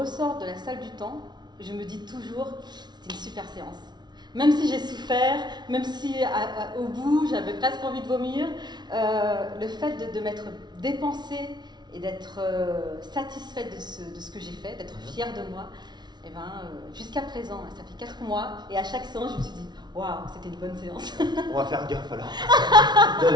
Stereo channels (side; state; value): left; late; 0.20 ms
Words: de la salle du temps, je me dis toujours c'était une super séance. Même si j'ai souffert, même si au bout j'avais presque envie de vomir, le fait de m'être dépensée et d'être satisfaite de ce que j'ai fait, d'être fière de moi, et jusqu'à présent, ça fait 4 mois, et à chaque séance, je me suis dit waouh, c'était une bonne séance. On va faire gaffe alors,